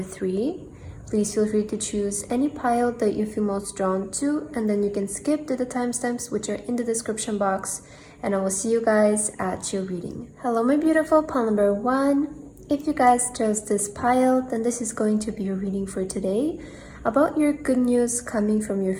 3. Please feel free to choose any pile that you feel most drawn to, and then you can skip to the timestamps which are in the description box, and I will see you guys at your reading. Hello my beautiful pile number 1. If you guys chose this pile, then this is going to be your reading for today about your good news coming from your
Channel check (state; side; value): identical; both; correlation 1.00